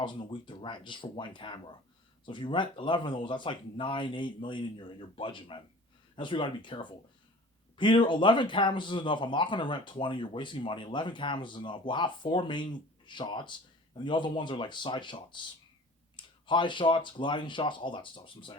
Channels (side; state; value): both; normal; correlation 0.44